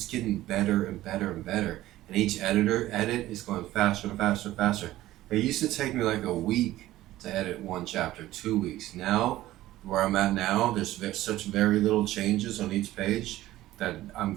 getting better and better and better. And each edit is going faster and faster and faster. It used to take me a week to edit one chapter, 2 weeks. Now, where I'm at now, there's such very little changes on each page that I'm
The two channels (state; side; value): quieter; left; 15.5 dB